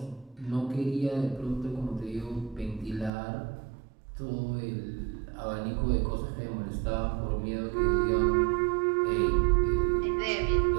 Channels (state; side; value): drops out; left; at 3.1 s